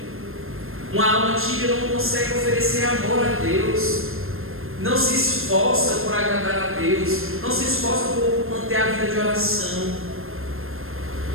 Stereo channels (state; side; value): late; left; 0.61 ms